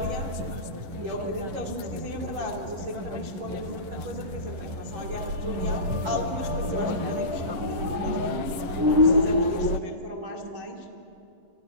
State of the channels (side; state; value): left; late; 11 ms